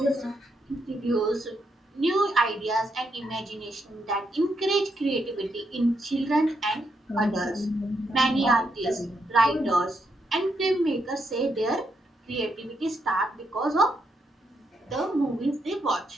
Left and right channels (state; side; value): normal; both; correlation 0.79